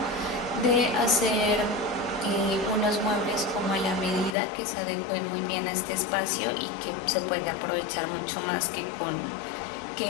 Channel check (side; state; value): right; drops out; at 4.4 s